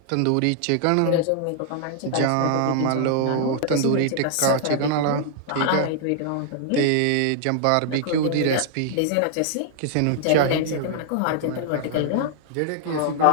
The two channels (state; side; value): different; both; correlation -0.01